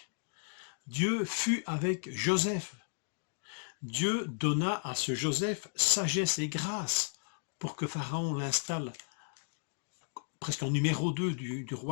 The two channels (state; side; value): silent; right; digital silence